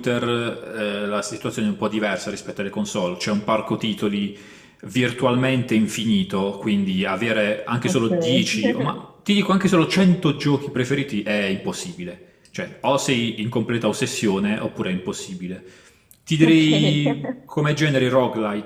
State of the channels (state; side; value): identical; both; correlation 1.00